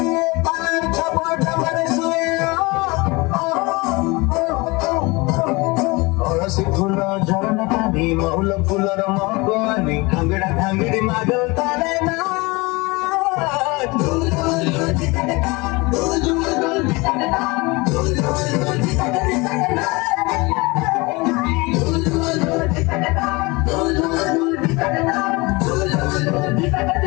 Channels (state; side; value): quieter; right; 24.9 dB